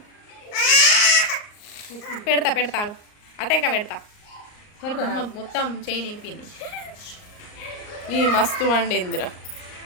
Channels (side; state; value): right; late; 38 ms